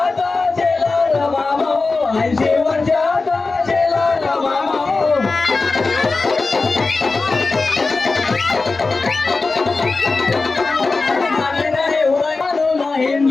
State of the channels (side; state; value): right; quieter; 3.8 dB